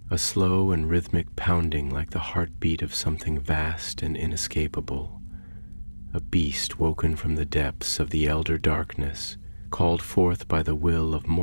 a slow and rhythmic pounding like the heartbeat of something vast and inescapable. A beast woken from the depths of the elder darkness, called forth by the will of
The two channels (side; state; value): both; inverted; correlation -1.00